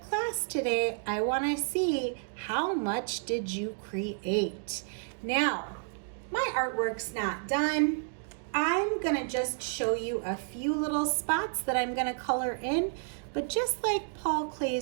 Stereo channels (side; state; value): left; silent; digital silence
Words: today, I wanna see how much did you create. Now, my artwork's not done. I'm gonna just show you a few little spots that I'm gonna color in, but just like Paul